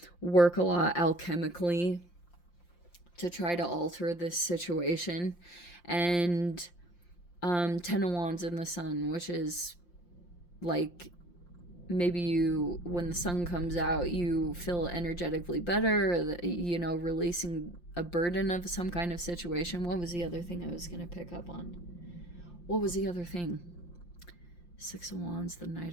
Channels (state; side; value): late; right; 5.7 ms